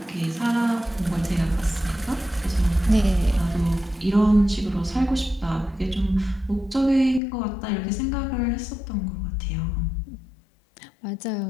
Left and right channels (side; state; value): right; drops out; at 7.2 s